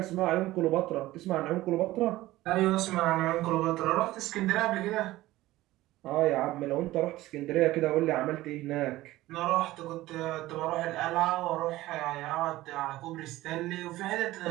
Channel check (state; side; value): quieter; left; 16.9 dB